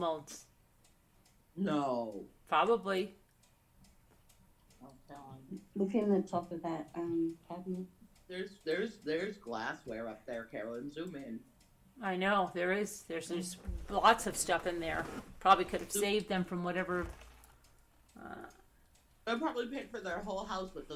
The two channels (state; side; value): identical; both; correlation 1.00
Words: No. Probably. I'm telling you. Look in the top of that cabinet. There's glassware up there, Carolyn. Zoom in. I know, there's lots of stuff in there. Probably could have saved them from whatever. They'll probably paid for their whole house with